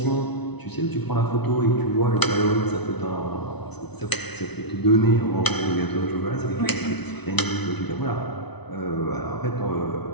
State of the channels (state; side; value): late; right; 0.99 ms